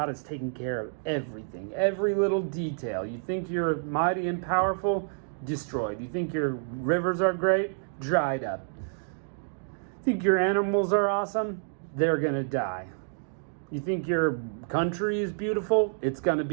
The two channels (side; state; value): left; silent; digital silence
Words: has taken care of everything, every little detail. You think you're mighty and powerful? Destroyed. You think your rivers are great? Dried up. Think your animals are awesome? They're going to die. You think your country is beautiful? It's going to